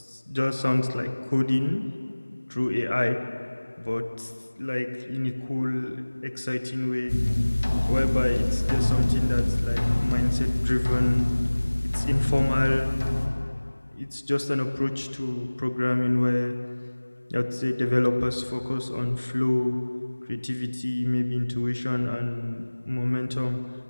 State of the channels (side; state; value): both; inverted; correlation -1.00